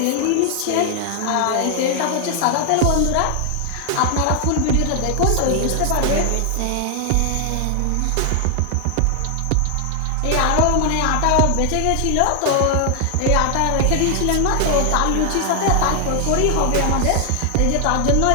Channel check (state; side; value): different; both; correlation 0.00